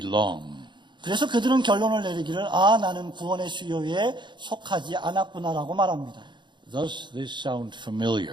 그래서 그들은 결론을 내리기를 나는 구원의 수요에 속하지 않았구나라고 말합니다. Does this sound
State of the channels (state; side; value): late; left; 0.22 ms